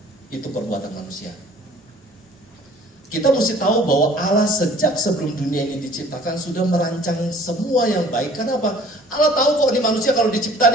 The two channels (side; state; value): both; normal; correlation 0.52